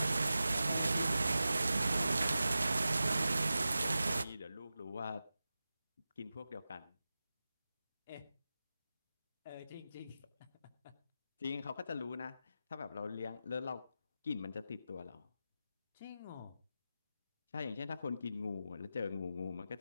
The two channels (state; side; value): inverted; both; correlation -0.93